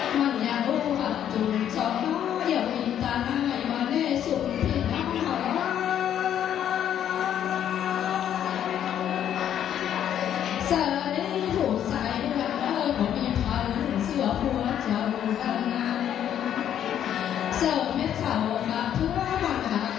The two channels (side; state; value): right; quieter; 10.1 dB